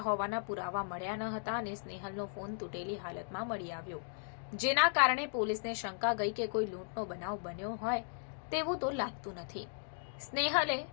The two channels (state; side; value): silent; right; digital silence